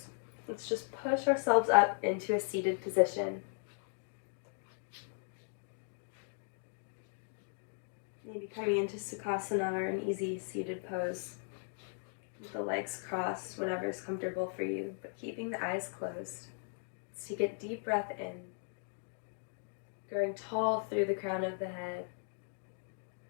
let's just push ourselves up into a seated position. Maybe coming into Sukhasana or an easy seated pose. With the legs crossed, whatever is comfortable for you, but keeping the eyes closed. Let's take a deep breath in, growing tall through the crown of the head.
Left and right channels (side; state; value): right; silent; digital silence